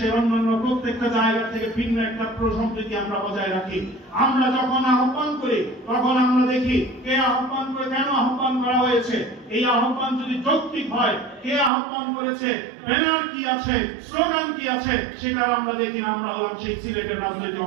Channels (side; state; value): left; drops out; at 11.7 s